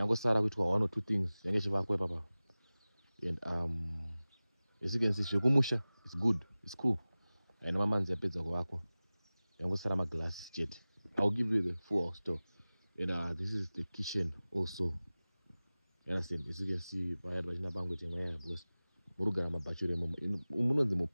Sara with 1 or 2 things. And as you can see, Shokumusha is good, it's cool. And Mama Nzapeza Wako. Yango Sarama glass jet. I'll give you the full house tour. And this is the kitchen also. You understand? As you can see, I had Vajina Bango because Murugana Bachure Umuno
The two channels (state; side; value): inverted; both; correlation -0.98